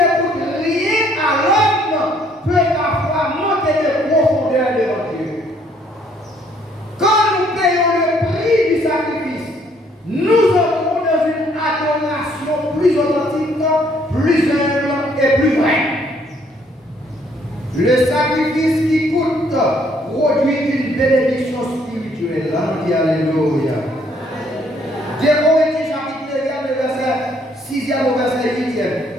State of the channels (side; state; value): both; normal; correlation 0.65